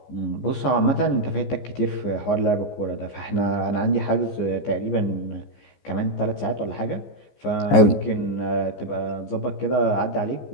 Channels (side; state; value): right; late; 15 ms